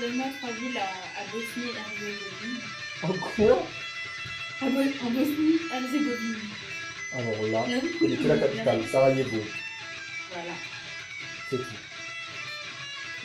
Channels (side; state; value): both; identical; correlation 1.00